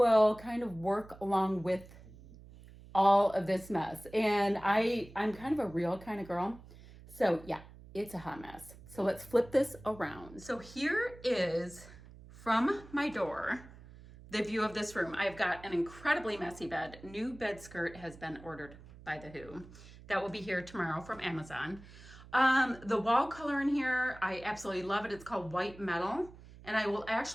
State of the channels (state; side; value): noise; right; hum, 19 dB below the sound